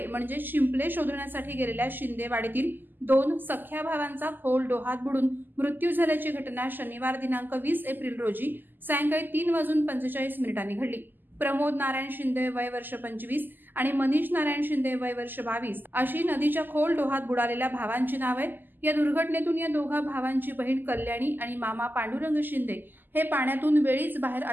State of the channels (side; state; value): left; late; 0.090 ms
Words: म्हणजे शिंपले शोधण्यासाठी गेलेल्या शिंदेवाडीतील 2 सख्या भावांचा खोल डोहात बुडून मृत्यू झाल्याची घटना शनिवार दिनांक 20 एप्रिल रोजी सायंकाळी 3:45 घडली। प्रमोद नारायण शिंदे वय वर्ष 25 आणि मनीष नारायण शिंदे वय वर्ष 22 अशी नदीच्या खोल डोहात बुडालेल्या भावांची नाव आहेत। या दुर्घटनेतून या दोघा भावांची बहीण कल्याणी आणि मामा पांडुरंग शिंदे हे पाण्यातून वेळीच बाहेर